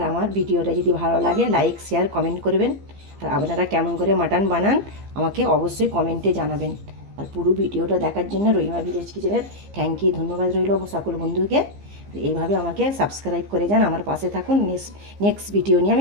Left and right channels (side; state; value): left; late; 15 ms